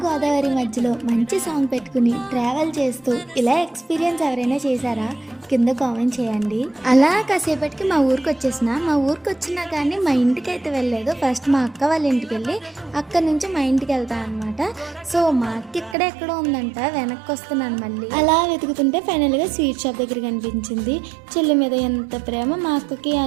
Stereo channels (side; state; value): left; drops out; at 16.0 s